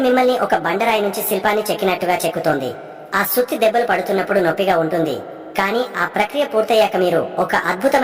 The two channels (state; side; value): identical; both; correlation 1.00